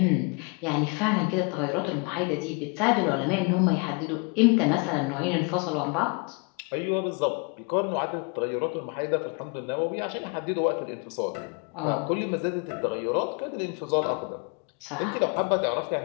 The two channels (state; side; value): quieter; right; 33.2 dB